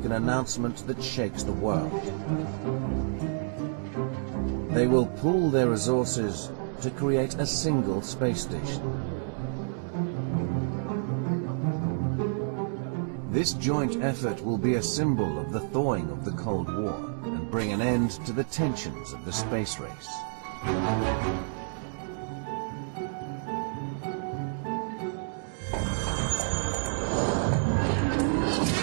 an announcement that shakes the world. They will pool their resources to create a single space station. This joint effort will be a symbol of the thawing of the Cold War and bring an end to the tensions of the space race.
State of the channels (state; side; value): silent; left; digital silence